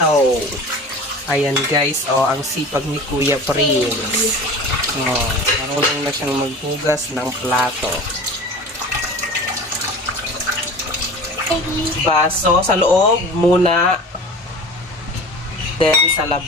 Ayan guys, ang sipag ni Kuya Prince. Marunong na siyang maghugas ng plato. Baso sa loob muna. Then sa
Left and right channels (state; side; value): normal; both; correlation 0.37